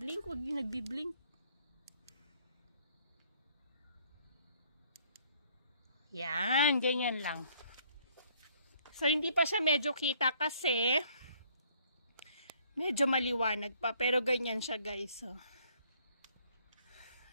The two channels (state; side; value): inverted; both; correlation -0.62